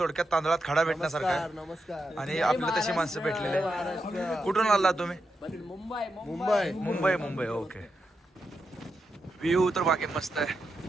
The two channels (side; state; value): both; normal; correlation 0.86